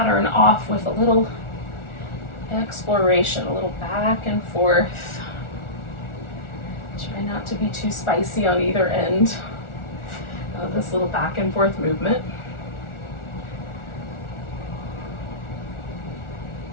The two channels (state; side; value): late; right; 1.4 ms